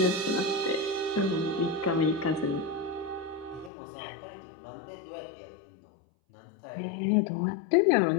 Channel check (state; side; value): drops out; right; at 3.7 s